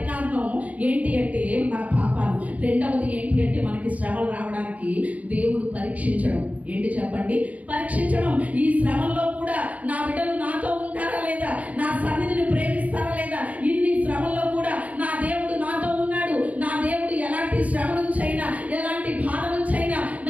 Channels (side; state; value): left; late; 0.071 ms